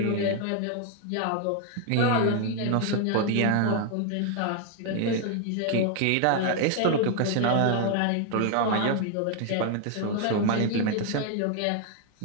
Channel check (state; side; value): different; both; correlation 0.00